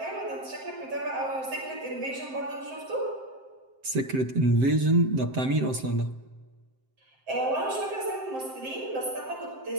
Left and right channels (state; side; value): late; left; 7.6 ms